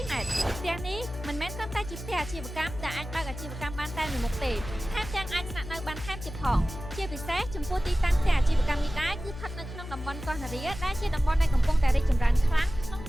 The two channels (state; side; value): noise; left; hum, 11 dB below the sound